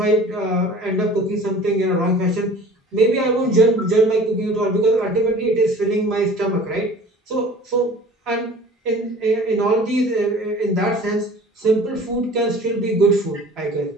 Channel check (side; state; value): both; normal; correlation 0.45